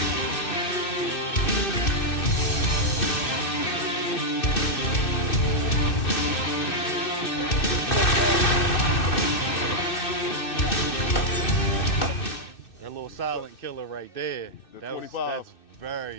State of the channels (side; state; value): right; late; 2.6 ms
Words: That little silent killer right there. The That's 25.